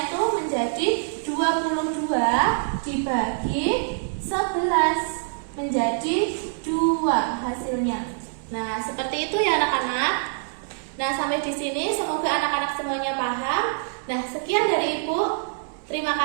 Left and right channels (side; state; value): left; silent; 62 dB below the other